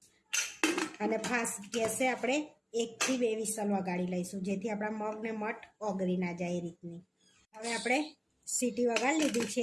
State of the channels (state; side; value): identical; both; correlation 1.00